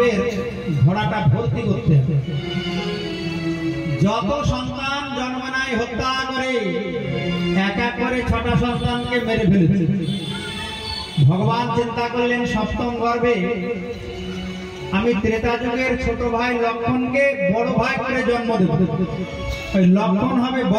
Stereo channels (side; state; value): both; identical; correlation 1.00